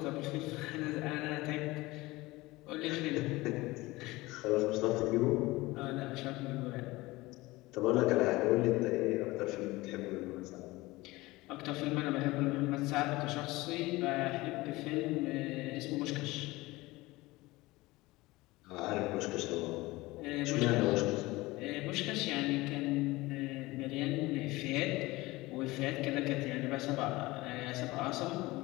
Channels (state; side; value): quieter; right; 20.5 dB